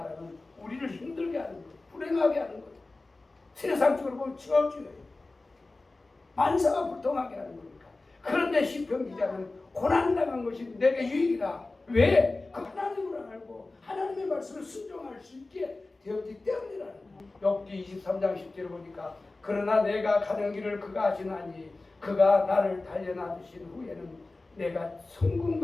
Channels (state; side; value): quieter; right; 3.2 dB